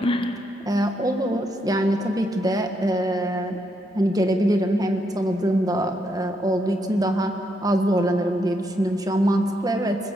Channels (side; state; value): both; normal; correlation 0.78